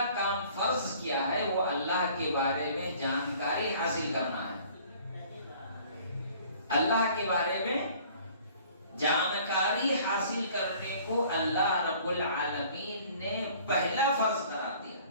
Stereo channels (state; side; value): inverted; both; correlation -0.53